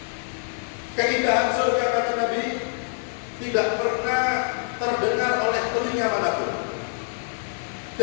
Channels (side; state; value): right; silent; 56 dB below the other